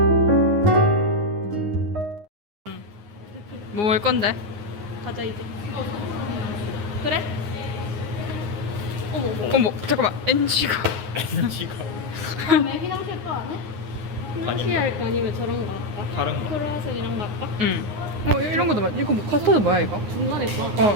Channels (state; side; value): late; left; 9.6 ms